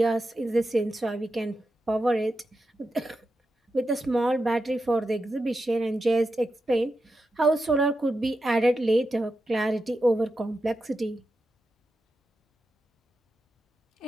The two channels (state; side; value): normal; both; correlation 0.89